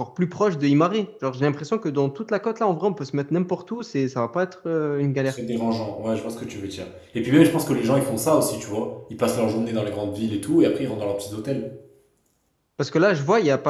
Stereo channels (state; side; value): identical; both; correlation 1.00